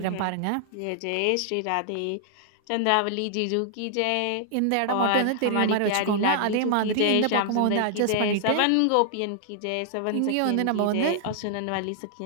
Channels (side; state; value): both; different; correlation -0.01